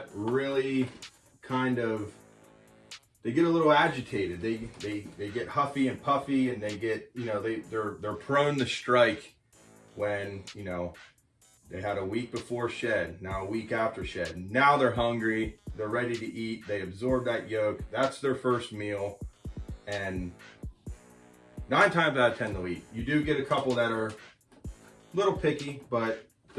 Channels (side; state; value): both; identical; correlation 1.00